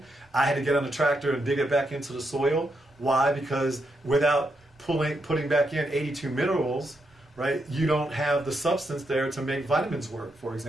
I had to get on the tractor and dig it back into the soil. Why? Because without putting back in 82 minerals, right, you don't have the substance there to make vitamins work, for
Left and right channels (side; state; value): both; normal; correlation 0.81